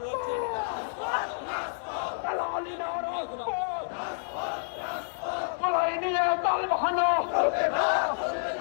নিয়ে দল বাহানো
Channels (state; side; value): silent; right; digital silence